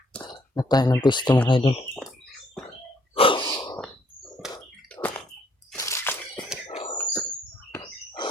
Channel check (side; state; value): both; normal; correlation 0.67